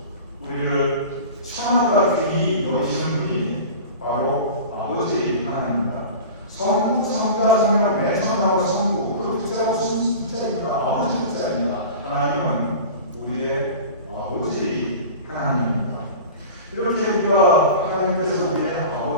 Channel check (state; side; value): inverted; both; correlation -0.35